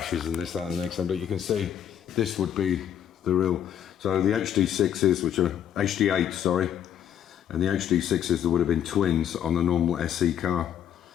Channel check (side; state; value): right; quieter; 9.9 dB